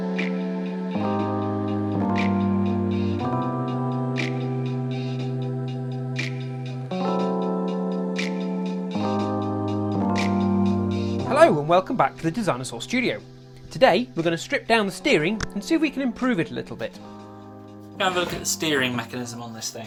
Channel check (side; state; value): both; identical; correlation 1.00